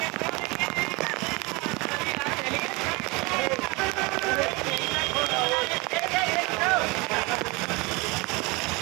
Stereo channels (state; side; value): quieter; left; 26.0 dB